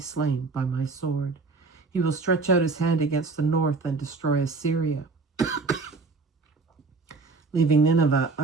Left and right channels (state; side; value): quieter; left; 4.0 dB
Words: by my sword. He will stretch out his hand against the north and destroy Assyria, leaving Nineveh